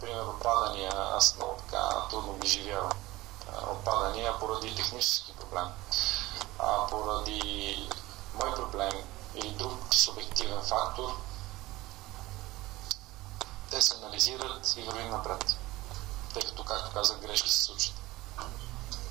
отпадания. Аз много така трудно ги живявам. Отпадания поради технически проблем, поради мой проблем или друг субективен фактор. Те се анализират и вървим напред, тъй като, както казах, грешки се случат.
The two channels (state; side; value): quieter; left; 19.0 dB